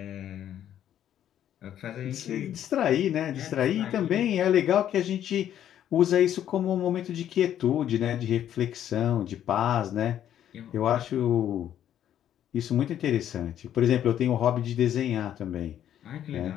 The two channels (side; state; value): right; quieter; 10.7 dB